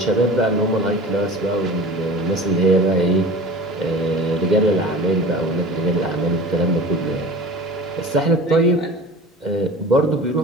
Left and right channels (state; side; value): normal; both; correlation 0.38